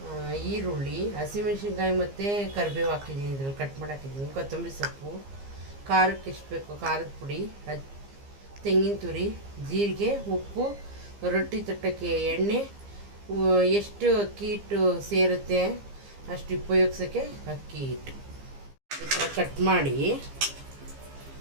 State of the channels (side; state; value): left; late; 15 ms